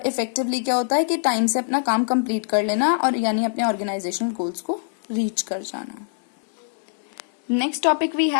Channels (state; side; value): silent; right; 63 dB below the other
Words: इफेक्टिवली क्या होता है कि टाइम से अपना काम कंप्लीट कर लेना, और यानी अपने ऑर्गेनाइजेशनल गोल्स को रीच कर जाना। Next topic we